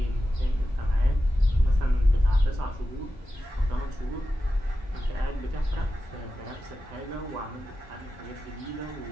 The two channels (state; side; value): normal; both; correlation 0.92